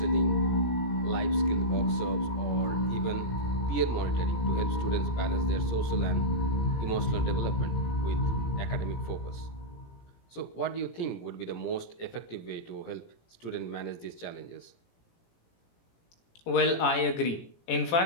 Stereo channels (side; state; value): right; late; 17 ms